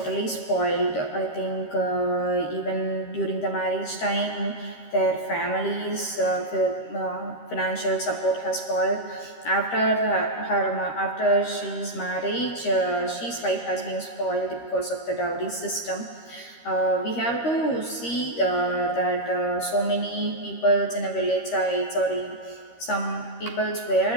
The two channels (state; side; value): late; right; 13 ms